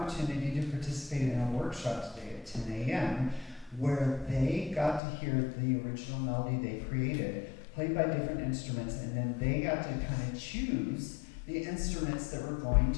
to participate in a workshop today at 10 a.m. where they got to hear the original melody they created, played by different instruments, and then they got to kind of choose the instruments that were going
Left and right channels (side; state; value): right; drops out; at 5.0 s